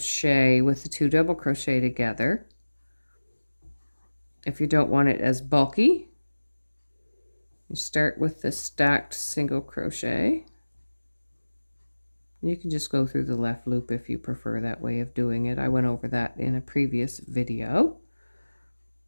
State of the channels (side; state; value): both; inverted; correlation -1.00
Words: with the 2 double crochet together, if you don't want it as bulky, you start with the stacked single crochet. You can just go through the left loop if you prefer that way of doing it. I went over that in a previous video.